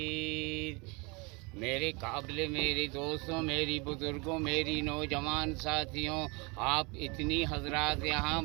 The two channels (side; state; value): left; quieter; 28.7 dB